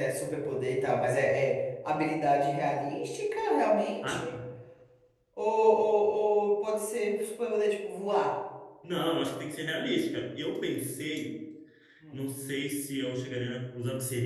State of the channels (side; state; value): both; identical; correlation 1.00